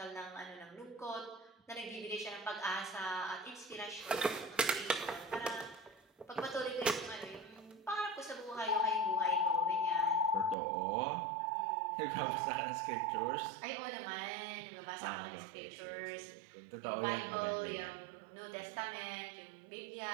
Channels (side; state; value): left; drops out; at 10.6 s